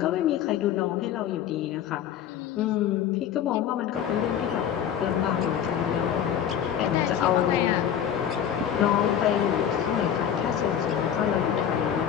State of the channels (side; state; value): right; quieter; 9.4 dB